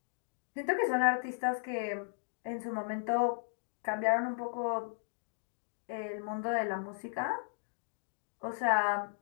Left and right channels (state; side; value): silent; right; digital silence